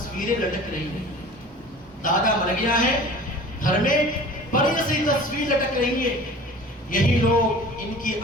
لٹک رہی ہیں، دادا مر گیا ہے، گھر میں بڑی سی تصویر لٹک رہی ہے۔ یہی لوگ، ان کی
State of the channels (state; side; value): normal; both; correlation 0.42